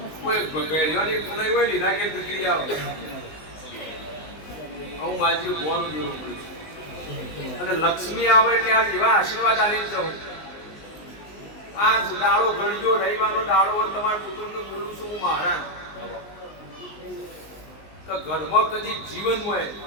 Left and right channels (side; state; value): right; late; 19 ms